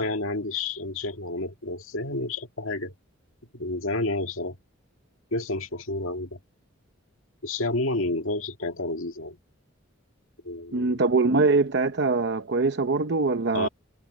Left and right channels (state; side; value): normal; both; correlation -0.01